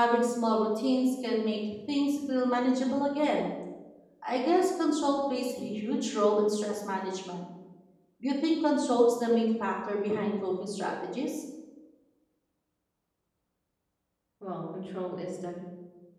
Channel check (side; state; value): both; identical; correlation 1.00